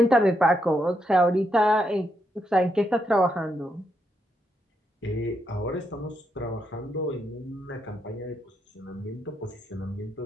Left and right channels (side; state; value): both; normal; correlation 0.80